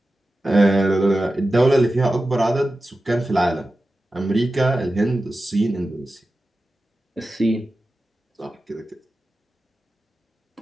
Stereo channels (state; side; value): normal; both; correlation 0.93